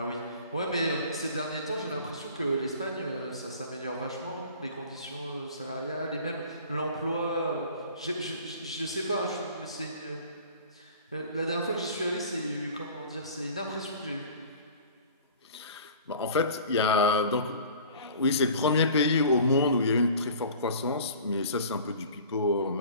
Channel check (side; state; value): both; inverted; correlation -0.45